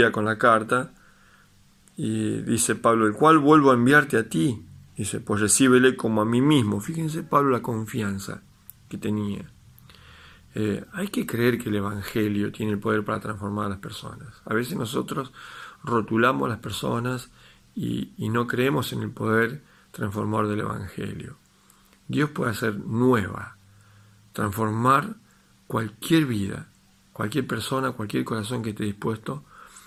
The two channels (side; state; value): both; identical; correlation 1.00